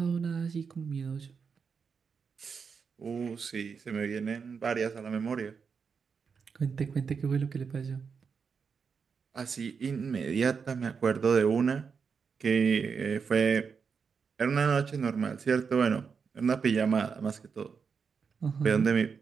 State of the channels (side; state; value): left; quieter; 5.8 dB